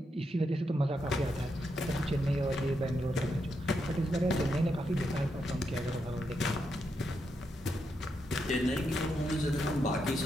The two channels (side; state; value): both; normal; correlation 0.82